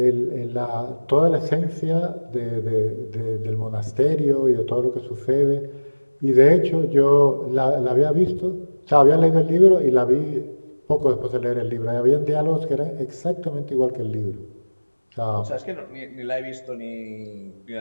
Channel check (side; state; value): both; inverted; correlation -1.00